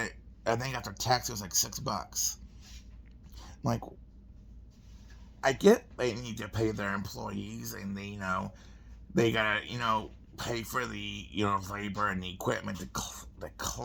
I think after tax it was like $6. I'm like, I get they need to pay their employees, and they gotta pay for the labor and the equipment to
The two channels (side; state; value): both; identical; correlation 1.00